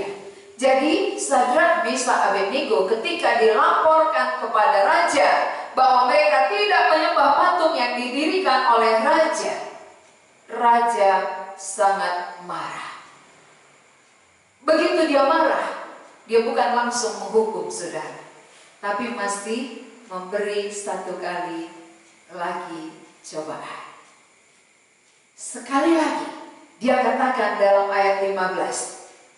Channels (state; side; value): identical; both; correlation 1.00